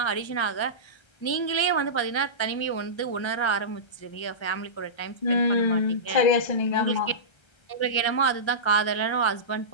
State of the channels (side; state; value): right; late; 1.3 ms